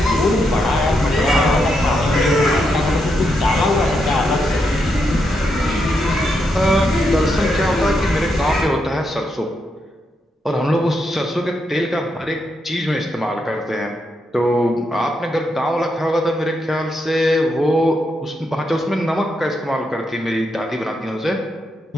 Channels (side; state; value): both; normal; correlation 0.82